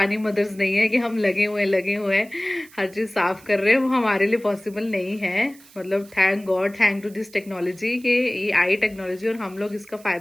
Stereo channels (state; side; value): noise; right; hiss, 24 dB below the sound